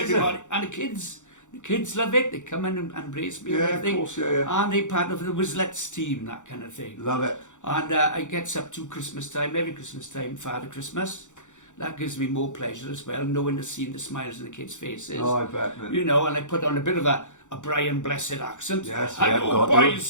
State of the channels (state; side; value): late; right; 0.85 ms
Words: everybody. And the kids love it. They come in and embrace me. Yeah, and of everything. course, yeah. And they're part of the Wizlets team, that kind of thing. Love it. And I gets up to Christmas time, every Christmas time, Father Christmas. That gives me more pleasure as well, knowing the seeing the smiles on the kids' faces. Oh, I bet, man. You know, and I put on a bit of a Brian Blessed accent. Yes, Hello, got to.